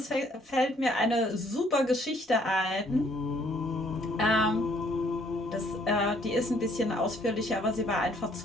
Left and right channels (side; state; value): both; normal; correlation 0.64